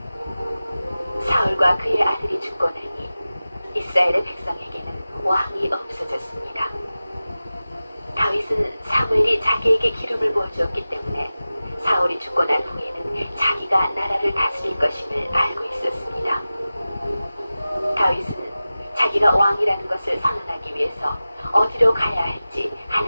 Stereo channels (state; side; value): inverted; both; correlation -0.96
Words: 사울과 그의 아들이 죽고 나니 이스라엘의 백성에게는 왕이 없어졌습니다. 다윗은 사무엘이 자기에게 기름을 부어주었기 때문에 사울이 죽고 난 후에는 자기가 나라를 다스릴 것임을 알고 있었습니다. 다윗은 자기가 왕이라는 것을 선언하기 위해서 어디로 가야 할지